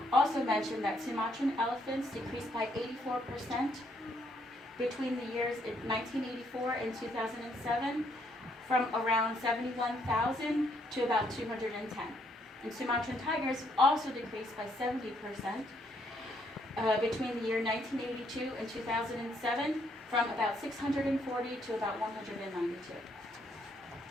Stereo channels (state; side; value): normal; both; correlation 0.71